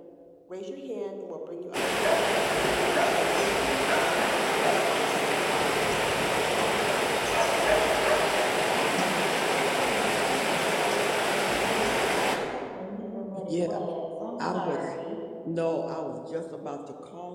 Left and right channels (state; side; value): identical; both; correlation 1.00